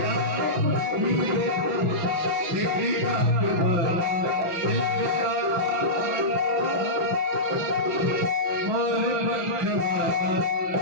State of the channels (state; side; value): late; left; 5.8 ms